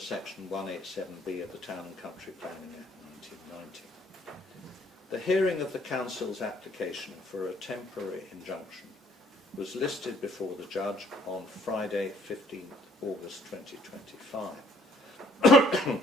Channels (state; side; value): normal; both; correlation 0.62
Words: 187B of the Town and Country Planning Act 1990. The hearing of the Council's application for a temporary injunction was listed before the judge on Friday, 15th August 2025.